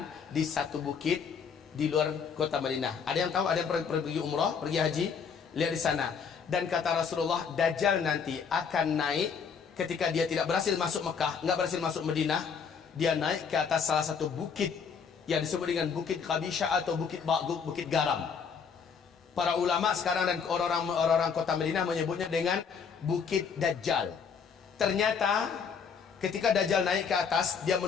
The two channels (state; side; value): quieter; right; 6.3 dB